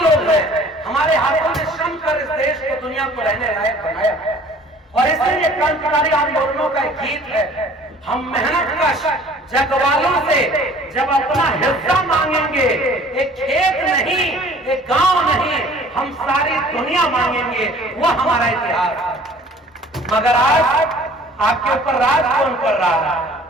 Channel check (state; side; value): normal; both; correlation 0.51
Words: लोग हैं? हमारे हाथों ने श्रम कर इस देश को, दुनिया को रहने लायक बनाया है। और इसलिए क्रांतिकारी आंदोलनों का एक गीत है, हम मेहनत कश जगवालों से जब अपना हिस्सा मांगेंगे, एक खेत नहीं, एक गांव नहीं, हम सारी दुनिया मांगेंगे। वो हमारा इतिहास है। मगर आज आपके ऊपर राज कौन कर रहा है?